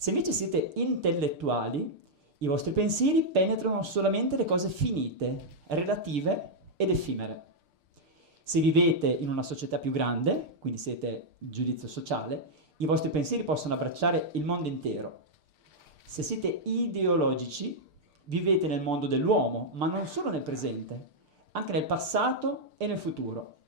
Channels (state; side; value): late; left; 6.6 ms